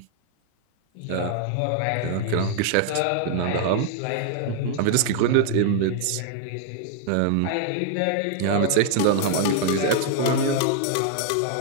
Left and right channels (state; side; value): different; both; correlation 0.00